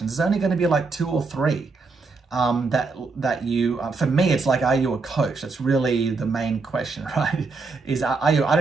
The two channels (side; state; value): left; quieter; 4.1 dB